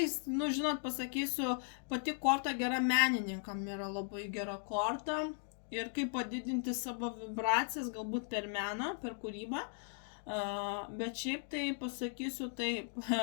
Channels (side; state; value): right; silent; 53 dB below the other